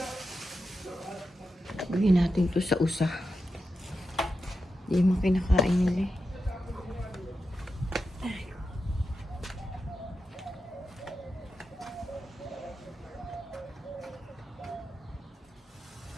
Bigyan natin to sa usa. Hindi mo kinakain nila eh.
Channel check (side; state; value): both; normal; correlation 0.89